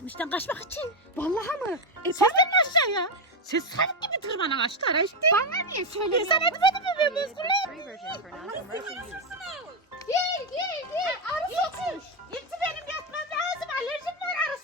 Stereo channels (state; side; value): normal; both; correlation 0.07